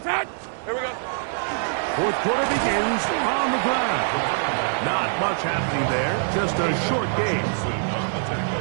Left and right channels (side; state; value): left; silent; digital silence